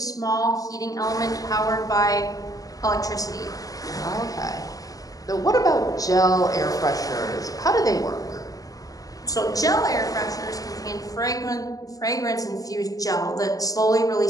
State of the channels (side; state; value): right; late; 0.17 ms